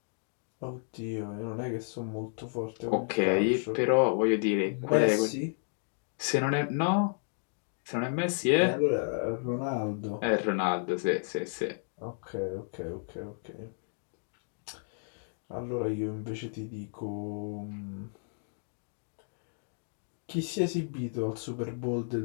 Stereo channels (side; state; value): right; silent; digital silence